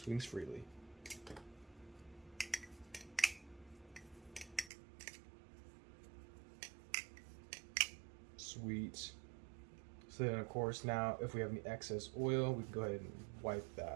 freely. Sweet. So then of course now if we have any excess oil, we can go ahead and wipe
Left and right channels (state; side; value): drops out; left; at 4.7 s